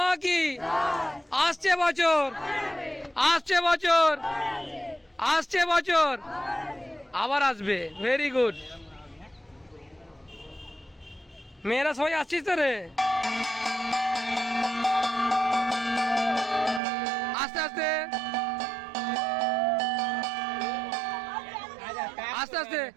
কি। আসছে বছর, আসছে বছর, আসছে বছর, আবার আসবে। Very good. মেয়েরা সবাই আসছিস তো রে? আস্তে আস্তে আস্তে আস্তে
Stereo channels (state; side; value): drops out; left; at 16.8 s